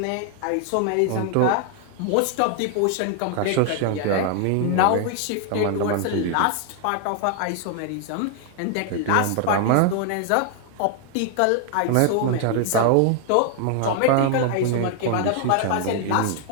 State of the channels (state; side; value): different; both; correlation 0.00